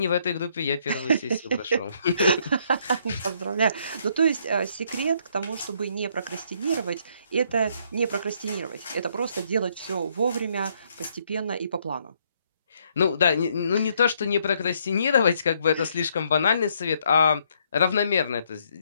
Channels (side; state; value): both; inverted; correlation -0.69